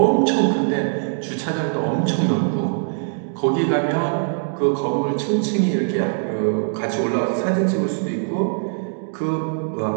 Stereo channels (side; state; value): left; silent; digital silence